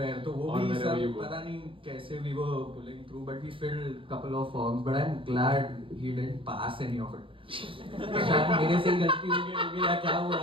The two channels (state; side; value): late; left; 0.25 ms